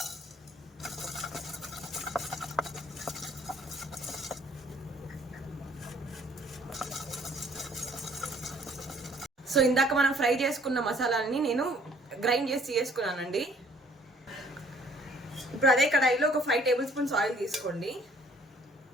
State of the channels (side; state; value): both; normal; correlation 0.59